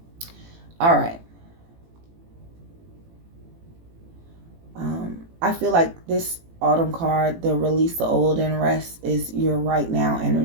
All right. I feel like this autumn card, the release the old and rest, is your right now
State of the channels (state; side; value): late; left; 18 ms